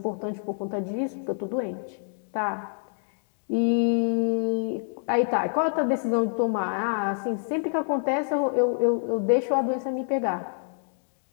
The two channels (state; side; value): silent; right; digital silence